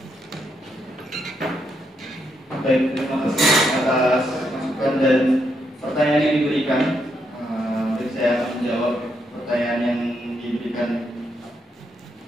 Baik, terima kasih atas masukan dan pertanyaan yang diberikan. Saya akan menjawab pertanyaan yang diberikan.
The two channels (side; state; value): both; normal; correlation 0.79